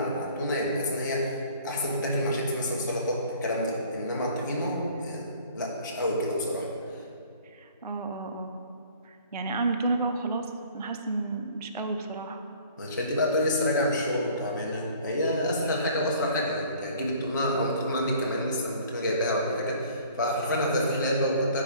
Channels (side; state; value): both; inverted; correlation -0.51